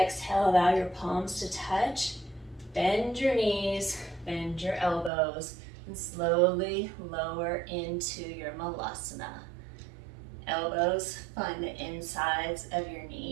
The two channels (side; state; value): left; drops out; at 5.1 s